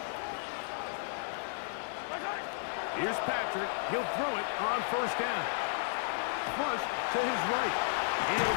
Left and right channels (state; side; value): silent; right; digital silence